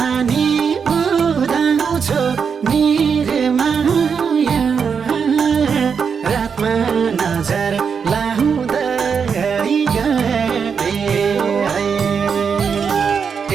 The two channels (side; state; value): left; quieter; 6.3 dB